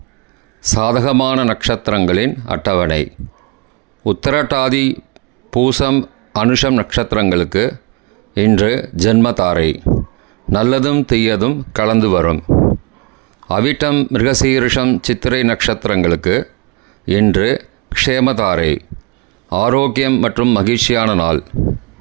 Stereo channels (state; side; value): quieter; left; 26.6 dB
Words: சாதகமான நட்சத்திரங்களின் அட்டவணை. உத்திரட்டாதி பூசம் அனுஷம் நட்சத்திரங்களுக்கு இன்று ஜென்மதாரை. நல்லதும் தீயதும் கலந்து வரும். அவிட்டம் மிருகசீரிஷம் சித்திரை நட்சத்திரங்களுக்கு இன்று க்ஷேமதாரை. ஆரோக்கியம் மற்றும் மகிழ்ச்சியான நாள்.